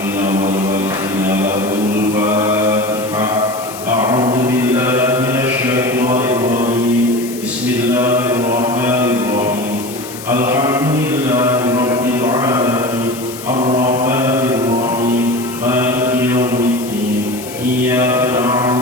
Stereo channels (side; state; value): left; noise; hiss, 14 dB below the sound